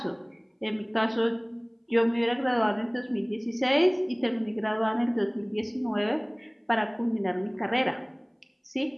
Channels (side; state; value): both; identical; correlation 1.00